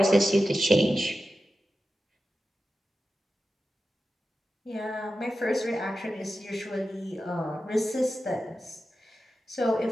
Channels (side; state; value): both; normal; correlation 0.92